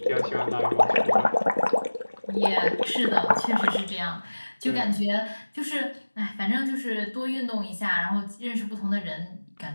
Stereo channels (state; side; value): inverted; both; correlation -1.00